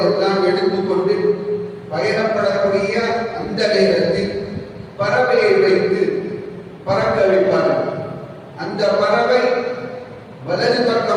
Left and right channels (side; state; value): both; identical; correlation 1.00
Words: எடுத்துக்கொண்டு பயணப்படக்கூடிய அந்த நேரத்தில் பறவையை வைத்து பறக்க வைப்பார்கள். அந்த பறவை வலது